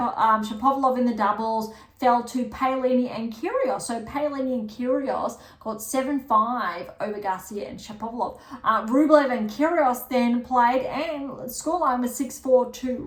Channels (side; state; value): both; identical; correlation 1.00